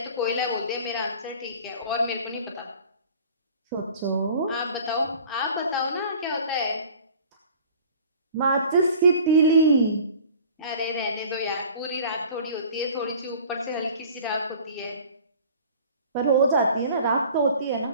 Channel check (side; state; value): both; inverted; correlation -0.46